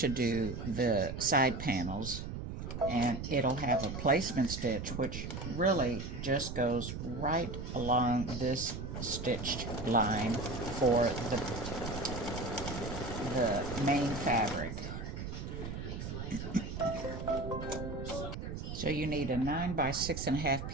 do the side panels, and it'll have a placement stitch which really just goes right along this stitched line for the main fabric. So you need a 9 by 6.5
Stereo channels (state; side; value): noise; right; rumble, 6 dB below the sound